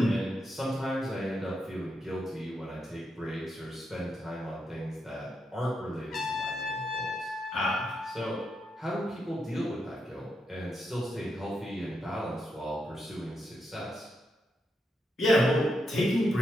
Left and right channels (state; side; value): normal; both; correlation 0.83